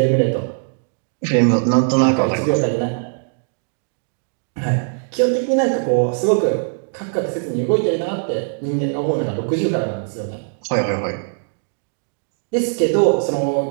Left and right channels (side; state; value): left; silent; 65 dB below the other